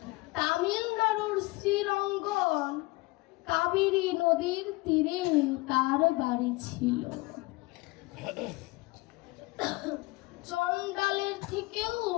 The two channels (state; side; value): quieter; right; 22.7 dB